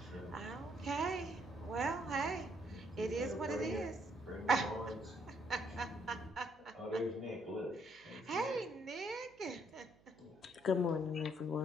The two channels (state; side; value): noise; right; hum, 28 dB below the sound